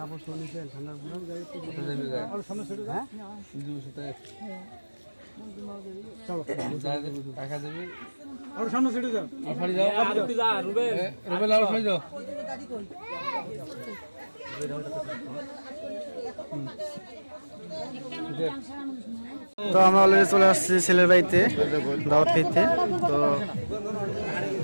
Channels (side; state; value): both; inverted; correlation -1.00